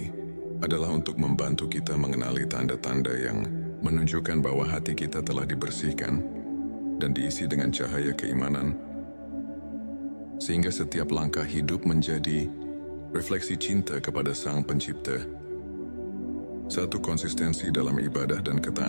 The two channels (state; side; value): inverted; both; correlation -1.00